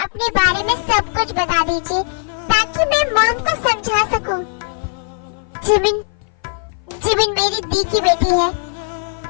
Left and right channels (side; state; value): right; silent; 57 dB below the other